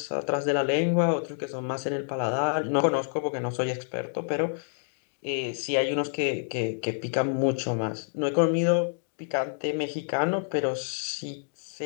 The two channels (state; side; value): silent; right; digital silence